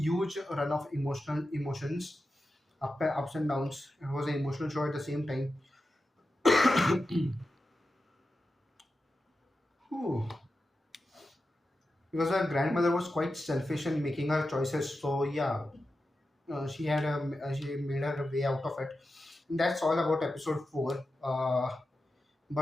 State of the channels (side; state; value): both; normal; correlation 0.91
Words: run of emotions, ups and downs. It was an emotional show at the same time. Whew. Because her grandmother was quite selfish in making her choices. So yeah, she made her way out of it. And that's all about episode 4.